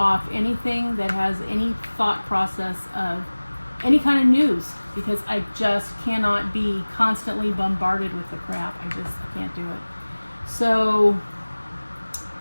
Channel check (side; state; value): both; inverted; correlation -1.00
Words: anything that has any thought process of any kind of news, because I just cannot be constantly bombarded with the crap. I can't do it. So,